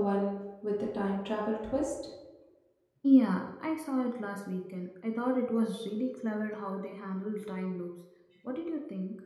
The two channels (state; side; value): identical; both; correlation 1.00